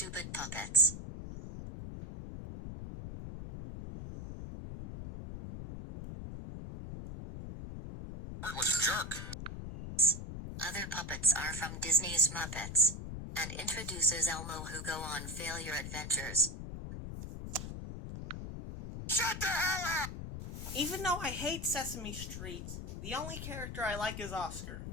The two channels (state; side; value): noise; left; rumble, 8 dB below the sound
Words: puppets. Heartless jerk. Other puppets are from Disney's Muppets, and introduces Elmo, who go on failure adventures. Shut the hell up! Even though I hate Sesame Street, the only character I like is Oscar.